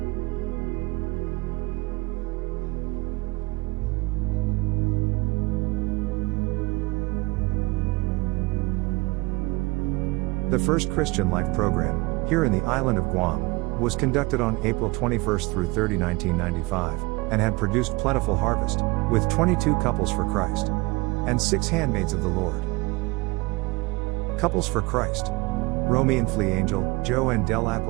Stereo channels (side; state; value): left; quieter; 23.9 dB